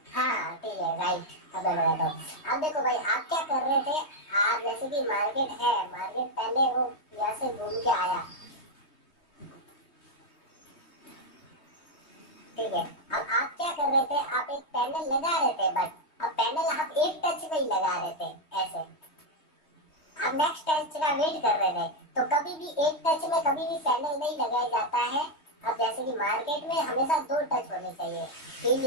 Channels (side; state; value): right; late; 3.2 ms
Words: हाँ ठीक है राइट, अब मैं बताता हूँ। अब देखो भाई, आप क्या कर रहे थे, आप जैसे कि मार्केट है, मार्केट पहले वो यहाँ से घूम के आया, ठीक है। अब आप क्या कर रहे थे, आप एक पैनल लगा रहे थे, बट अब पैनल आप एक टच में ही लगा रहे थे ऐसे, आप नेक्स्ट टच का वेट कर रहे थे, तो कभी भी एक टच में कभी भी पैनल नहीं लगाया जाता है। अब जैसे कि मार्केट में हमेशा 2 टच होने चाहिए,